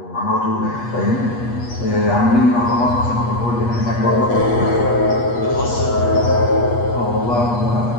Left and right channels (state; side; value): late; right; 8.3 ms